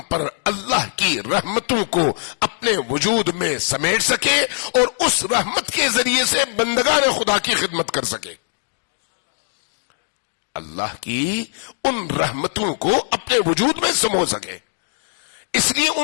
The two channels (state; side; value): silent; right; digital silence